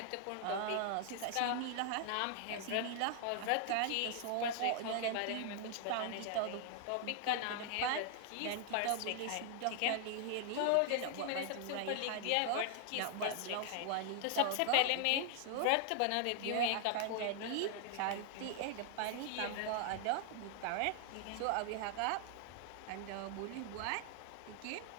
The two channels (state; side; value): different; both; correlation 0.00